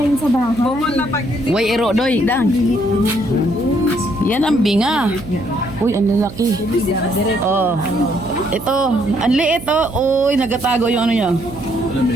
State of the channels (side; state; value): right; noise; hum, 14 dB below the sound